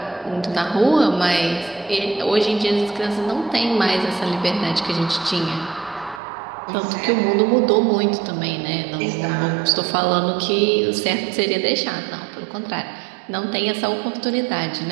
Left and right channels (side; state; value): left; drops out; at 6.2 s